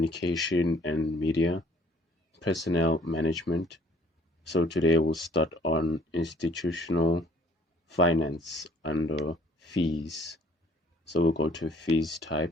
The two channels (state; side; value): normal; both; correlation 0.58